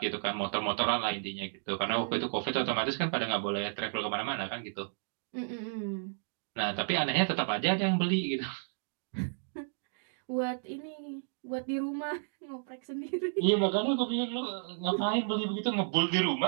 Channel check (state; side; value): silent; left; digital silence